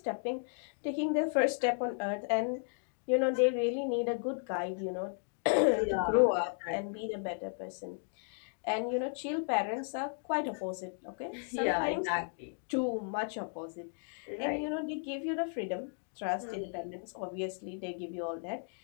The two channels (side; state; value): right; silent; 55 dB below the other